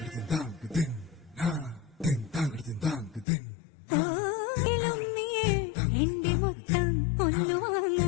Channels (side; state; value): right; drops out; at 3.2 s